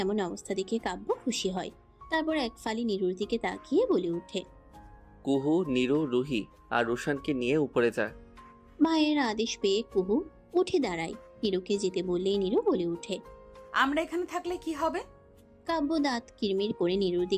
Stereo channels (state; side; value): identical; both; correlation 1.00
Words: এমন অবস্থা দেখে কাব্য খুশি হয়। তারপর এক ফালি নীরুর দিকে তাকিয়ে বলে ওঠে, কুহু, নীরু, রুহি আর রুশানকে নিয়ে উপরে যা। ভাইয়ের আদেশ পেয়ে কুহু উঠে দাঁড়ায়। নীরুকে যেতে বললেই নীরু বলে ওঠে, আমরা এখানে থাকলে কি হবে? কাব্য দাঁত কিরমির করে নীরুর